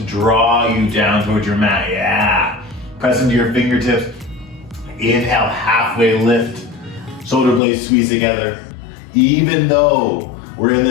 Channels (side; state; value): right; drops out; at 7.6 s